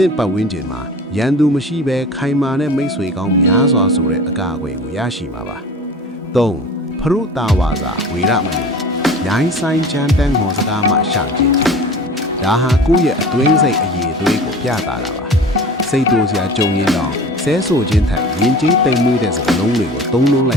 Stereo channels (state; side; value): normal; both; correlation 0.39